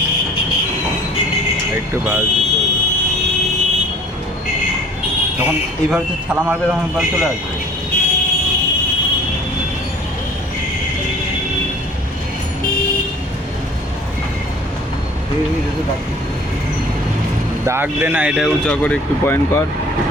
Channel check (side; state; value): both; normal; correlation 0.49